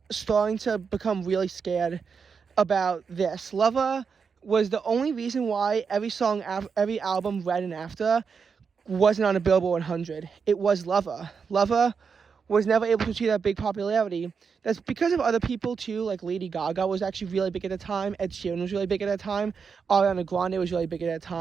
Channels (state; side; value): quieter; left; 5.9 dB